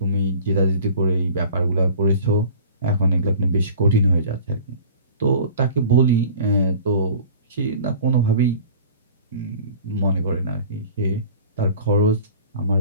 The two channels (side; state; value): both; inverted; correlation -0.44